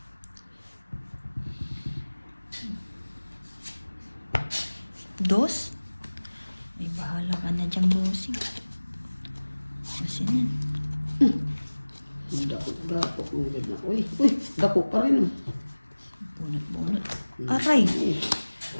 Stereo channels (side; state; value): both; inverted; correlation -1.00